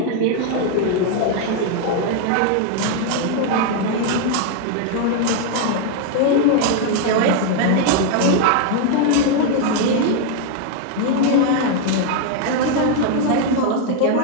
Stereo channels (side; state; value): both; different; correlation 0.00